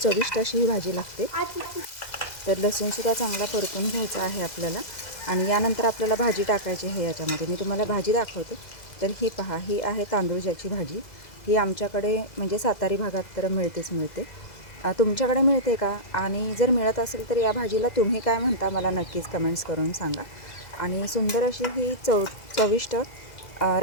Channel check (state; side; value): late; right; 2.0 ms